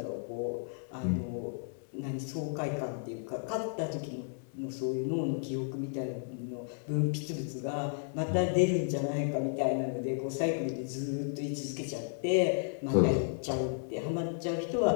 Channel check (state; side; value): silent; right; 56 dB below the other